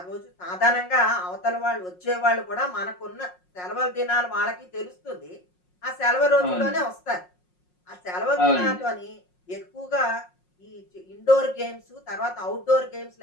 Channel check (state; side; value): late; right; 5.5 ms